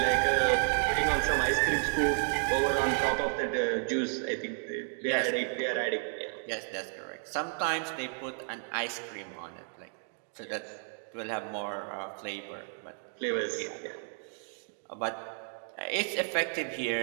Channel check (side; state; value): left; silent; 56 dB below the other